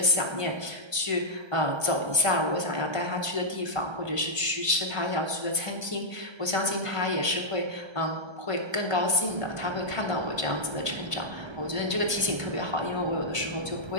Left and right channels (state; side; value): late; left; 1.3 ms